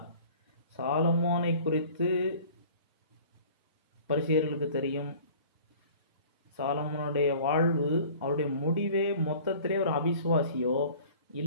சாலமோனை குறித்து பரிசேயர்களுக்கு தெரியும். சாலமோனுடைய வாழ்வு, அவருடைய முடிவே மொத்தத்திலே ஒரு அவிசுவாசியோ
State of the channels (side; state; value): both; inverted; correlation -0.47